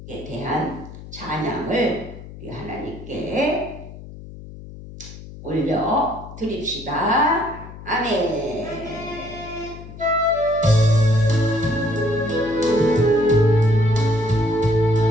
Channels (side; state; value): left; noise; hum, 15 dB below the sound